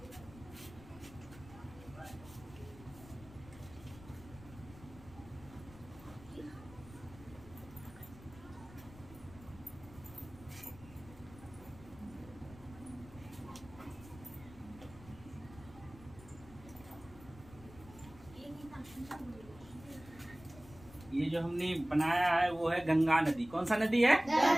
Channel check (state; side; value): noise; left; rumble, 18 dB below the sound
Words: ये जो हमने बनाया है वो है गंगा नदी। कौन सा नदी है?